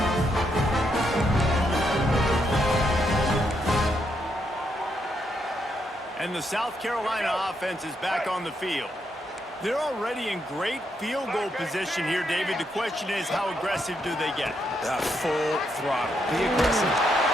And the South Carolina offense is back on the field. They're already in great field goal position here, David. The question is, how aggressive do they get? Full throttle. Be aggressive.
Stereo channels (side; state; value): both; normal; correlation 0.79